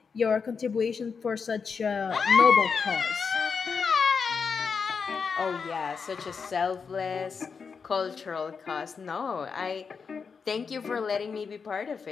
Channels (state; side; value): quieter; right; 5.6 dB